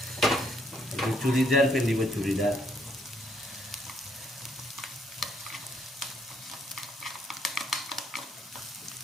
এইটো চুৰিদাৰ পিন্ধিব, চুৰিদাৰ।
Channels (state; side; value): normal; both; correlation 0.70